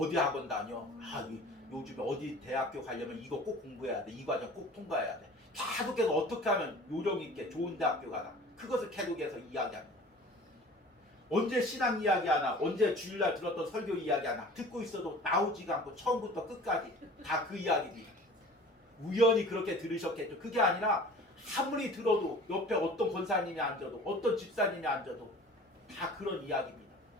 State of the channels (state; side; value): normal; both; correlation 0.44